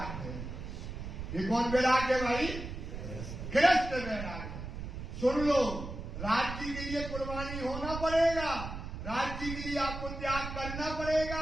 है। ये कौन वैराग है भाई, गृहस्थ वैराग है। सुन लो, राज्य के लिए कुर्बानी होना पड़ेगा, राज्य के लिए आपको त्याग करना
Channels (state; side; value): noise; right; rumble, 7 dB below the sound